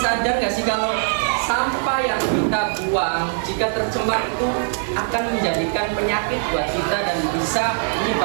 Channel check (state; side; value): silent; left; 65 dB below the other